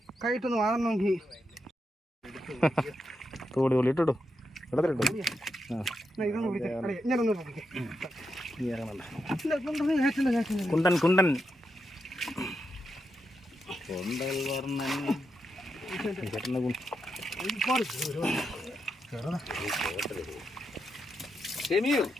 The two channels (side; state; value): both; normal; correlation 0.85